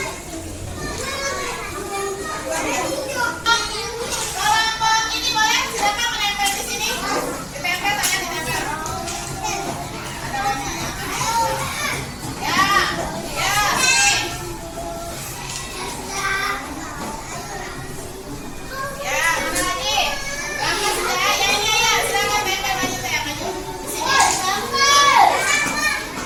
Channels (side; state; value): both; identical; correlation 1.00